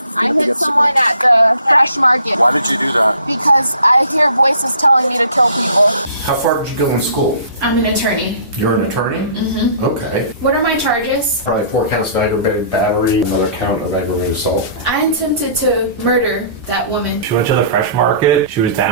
I hit someone at the fresh market. Why did you do that? Because I hear voices telling me to kill people. How far did you go in school? I'm an attorney. You're an attorney? Mm-hmm. Okay. What are my charges? Probably 4 counts of aggravated battery, another count of aggravated assault. I attempted to murder that woman. She went to the fresh market. She was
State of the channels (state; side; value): inverted; both; correlation -0.51